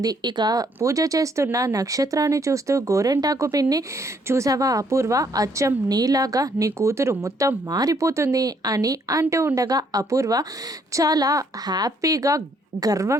ఇక పూజ చేస్తున్న నక్షత్రాన్ని చూస్తూ గోరెంటాకు పిన్ని, చూసావా అపూర్వ, అచ్చం నీలాగా నీ కూతురు మొత్తం మారిపోతుంది అని అంటూ ఉండగా అపూర్వ చాలా హ్యాపీగా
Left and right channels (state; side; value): normal; both; correlation 0.68